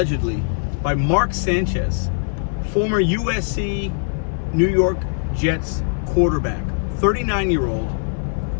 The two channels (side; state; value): right; silent; digital silence